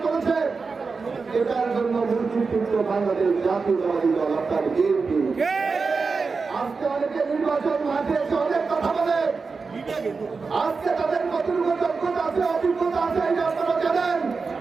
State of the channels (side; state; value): left; quieter; 4.6 dB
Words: করেছে, এটার জন্য মুক্তিযুদ্ধ বাংলাদেশ জাতীয়তাবাদী দল অর্থাৎ বিএনপি। আজকে অনেকে নির্বাচন মাঠে এসে অনেক কথা বলে, আজকে তাদের কতটুকু দক্ষতা আছে অভিজ্ঞতা আছে এটা আপনারা জানেন।